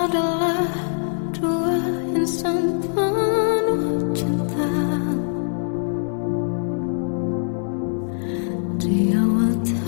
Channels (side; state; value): right; silent; 64 dB below the other